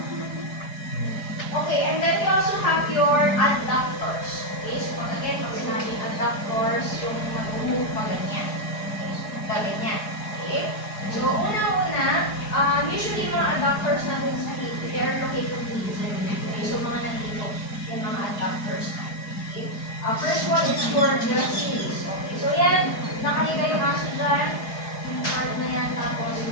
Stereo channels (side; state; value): right; late; 4.8 ms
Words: Okay, and then we also have your adductors. Okay, so again, pag sinabing adductors, yung mag-move pa ganyan. Okay, so ganyan. Okay? So, una-una, usually mga adductors natin sa hip, they are located dito. Okay, so mga nandito, yung mga adductors natin. Okay? First one is your gracilis. Okay, so yan, nakahiga yung aso dyan, yung part na yan, tapos